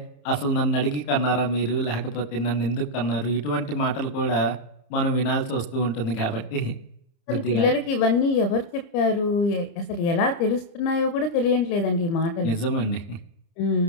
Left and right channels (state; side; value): late; right; 29 ms